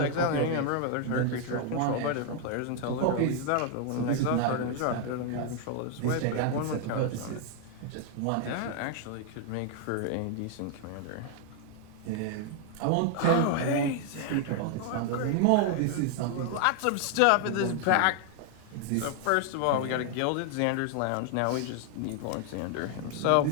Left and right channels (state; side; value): different; both; correlation 0.00